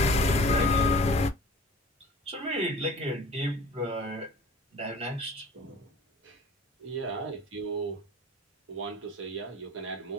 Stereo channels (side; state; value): both; normal; correlation 0.45